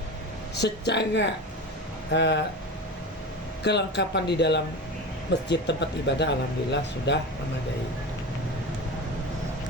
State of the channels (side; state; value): both; normal; correlation 0.27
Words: secara kelengkapan di dalam masjid tempat ibadah alhamdulillah sudah memadai.